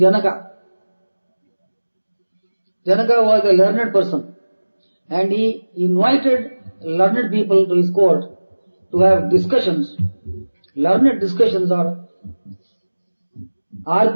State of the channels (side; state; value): both; inverted; correlation -1.00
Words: Janaka was a learned person, and he invited learned people to his court to have discussions, learned discussions or